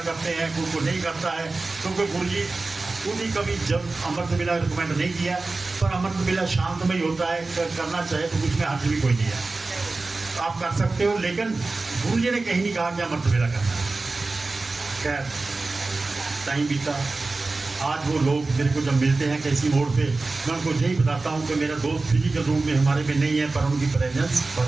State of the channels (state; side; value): quieter; left; 3.5 dB